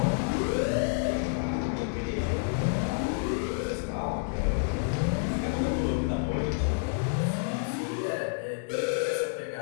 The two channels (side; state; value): right; silent; digital silence